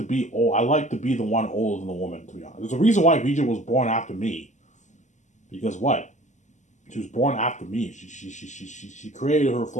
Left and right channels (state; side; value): late; right; 0.34 ms